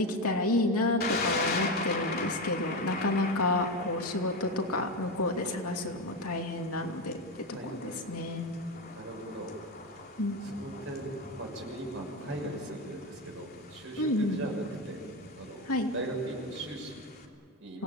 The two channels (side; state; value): both; normal; correlation 0.15